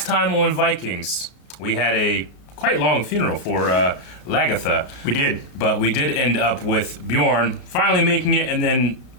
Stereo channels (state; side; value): late; right; 34 ms